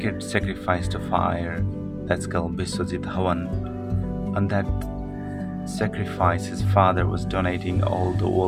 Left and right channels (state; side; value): identical; both; correlation 1.00